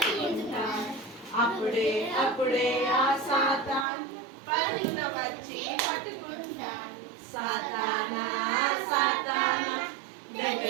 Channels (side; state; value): left; drops out; at 3.9 s